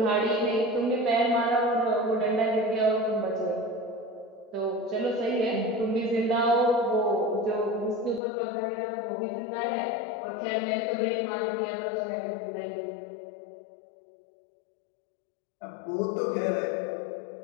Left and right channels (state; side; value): drops out; right; at 8.2 s